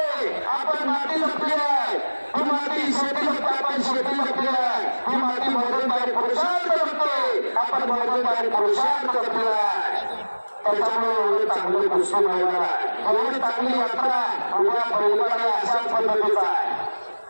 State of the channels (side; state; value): both; inverted; correlation -1.00